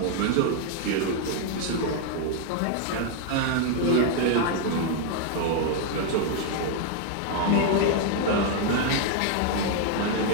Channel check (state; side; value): different; both; correlation 0.00